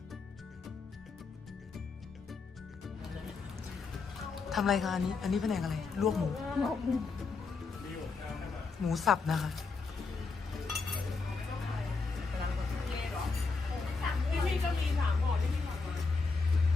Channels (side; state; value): right; quieter; 4.4 dB